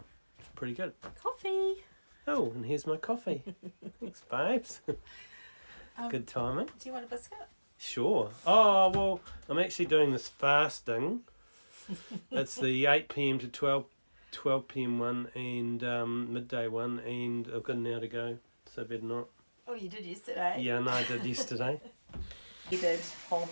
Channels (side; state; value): both; inverted; correlation -1.00